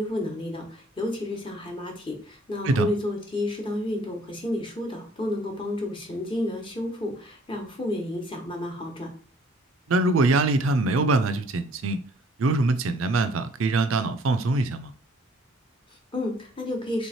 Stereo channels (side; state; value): both; normal; correlation 0.59